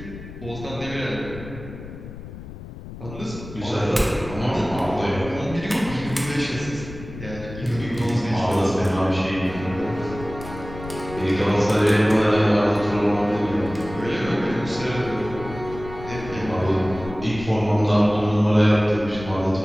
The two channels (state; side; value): noise; left; rumble, 13 dB below the sound